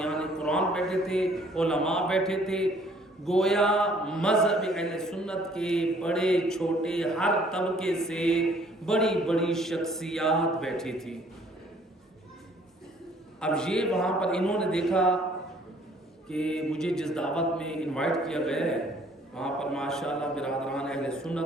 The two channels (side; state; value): both; normal; correlation 0.59